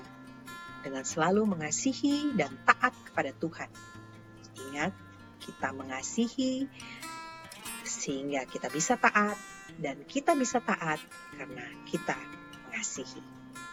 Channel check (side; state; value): both; identical; correlation 1.00